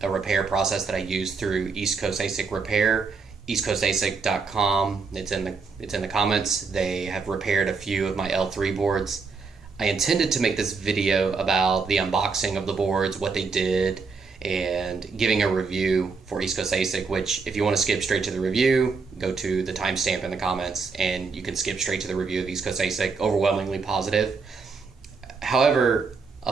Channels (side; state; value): left; quieter; 4.8 dB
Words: a repair process that I use through East Coast ASIC Repair, EastCoastASIC.com. It's in the comments. They have repaired a few of my L3 boards. I intended to make this video about the unboxing of the boards, what they did, and giving a review for East Coast ASIC, which if you want to skip straight to the review, go to the timestamp in the comments and you can skip straight to the review of East Coast ASIC. Overwhelmingly positive. However,